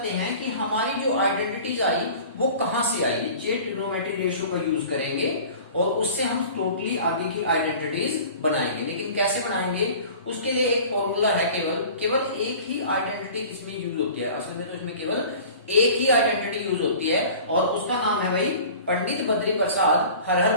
हैं कि हमारी जो आइडेंटिटीज आई वो कहां से आई। ये ट्रिग्नोमेट्रिक रेशो का यूज करेंगे और उससे हम टोटली आगे की आइडेंटिटीज बनाएंगे। लेकिन कैसे बनाएंगे? उसके लिए एक फॉर्मूला है, केवल एक ही आइडेंटिटी इसमें यूज होती है। असल में तो इसमें केवल एक ही आइडेंटिटी यूज होती है और उसका नाम है भाई पंडित बद्री प्रसाद हर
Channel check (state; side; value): inverted; both; correlation -0.43